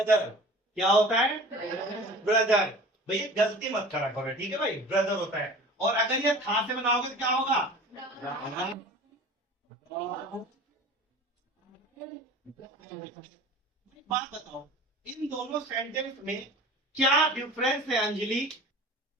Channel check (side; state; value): both; normal; correlation 0.41